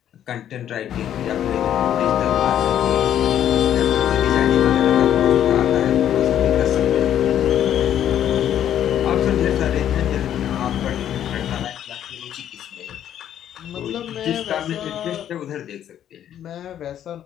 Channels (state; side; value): quieter; right; 10.5 dB